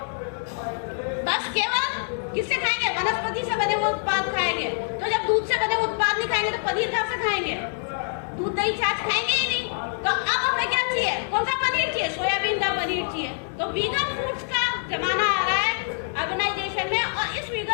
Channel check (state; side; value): silent; right; digital silence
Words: बस केवल किससे खाएंगे, वनस्पति से बने हुए उत्पाद खाएंगे। तो जब दूध से बने हुए उत्पाद नहीं खाएंगे तो पनीर कहाँ से खाएंगे, दूध दही छाछ खाएंगे ही नहीं। तो अब हमें क्या चाहिए, कौन सा पनीर चाहिए, सोयाबीन का पनीर चाहिए। तो वीगन फूड्स का जमाना आ रहा है ऑर्गेनाइजेशन में, और इस